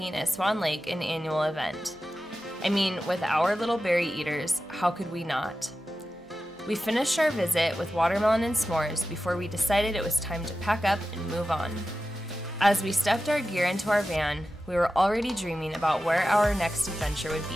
at Swan Lake an annual event. I mean, with our little berry eaters, how could we not? We finished our visit with watermelon and s'mores before we decided it was time to pack up and move on. As we stuffed our gear into our van, we were already dreaming about where our next adventure would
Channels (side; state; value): both; normal; correlation 0.93